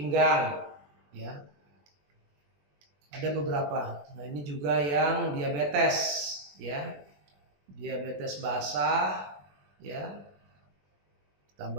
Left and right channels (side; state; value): left; late; 21 ms